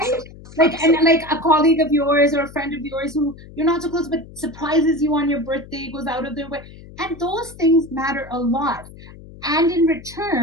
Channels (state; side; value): noise; left; hum, 18 dB below the sound